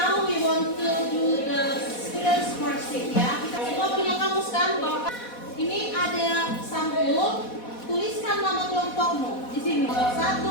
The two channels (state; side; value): late; right; 4.1 ms